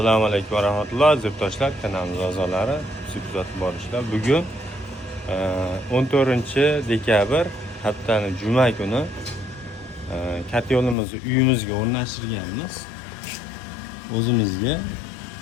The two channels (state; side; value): drops out; right; at 11.0 s